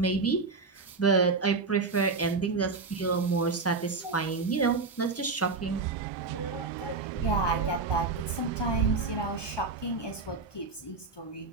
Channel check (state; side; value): quieter; left; 4.2 dB